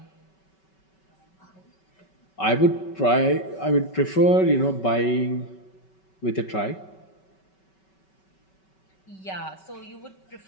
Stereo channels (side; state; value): right; late; 5.3 ms